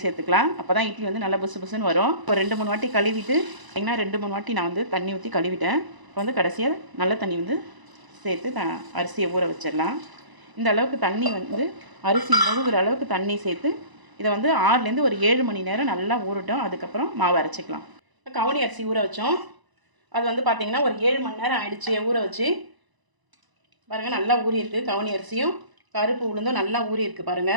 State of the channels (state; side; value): late; left; 1.0 ms